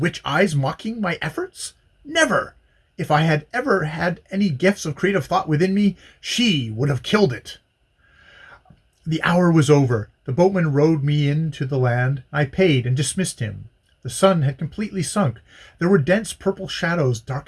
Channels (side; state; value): both; identical; correlation 1.00